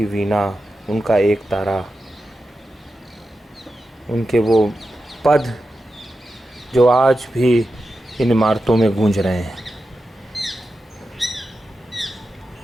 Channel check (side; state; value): both; normal; correlation 0.90